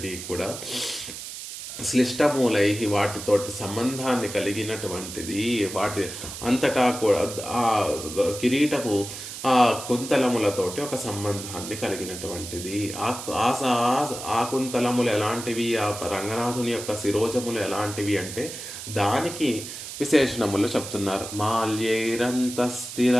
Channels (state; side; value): noise; right; hiss, 10 dB below the sound